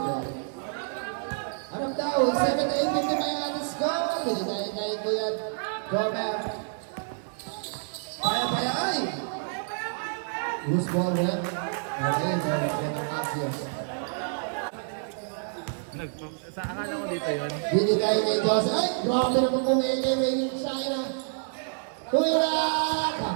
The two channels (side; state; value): left; silent; digital silence